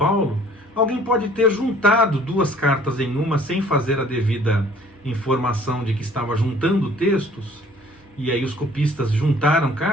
alguém pode ter juntado duas cartas em uma sem fazer a devida informação de que estava juntando textos, e aí os copistas juntaram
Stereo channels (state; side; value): normal; both; correlation 0.55